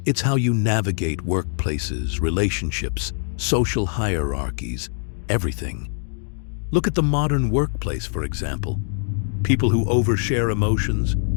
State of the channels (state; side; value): silent; right; 56 dB below the other